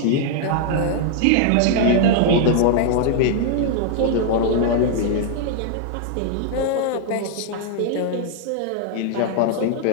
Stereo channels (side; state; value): both; different; correlation 0.00